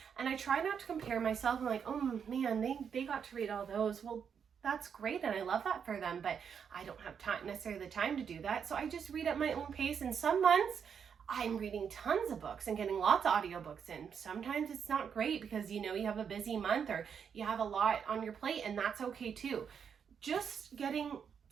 And I try not to compare myself. I'm like, oh man, they got to read all those. Well, that's great, and I love that for them, but I don't have necessarily the time to do that. So I just read at my own pace. And some months I'm reading tons of books and getting lots of audiobooks in. Sometimes it's not great, because, you know, you have a busy month or you have a lot on your plate, and that's okay too. Just getting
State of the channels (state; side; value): quieter; left; 7.2 dB